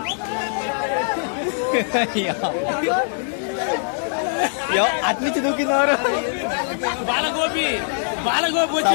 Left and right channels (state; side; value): silent; right; digital silence